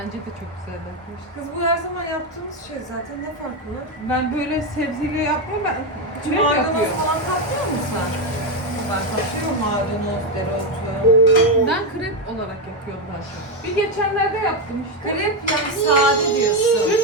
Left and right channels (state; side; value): normal; both; correlation 0.08